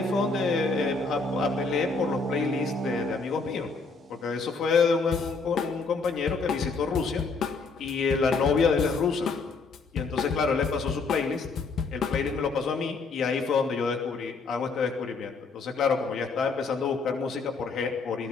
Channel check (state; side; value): quieter; right; 4.3 dB